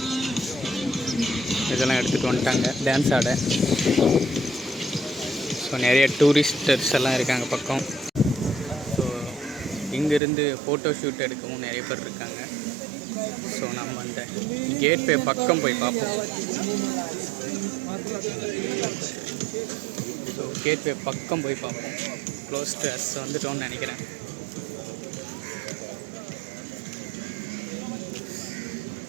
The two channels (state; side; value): drops out; left; at 10.2 s